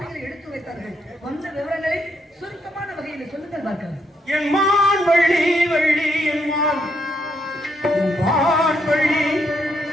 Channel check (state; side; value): normal; both; correlation 0.77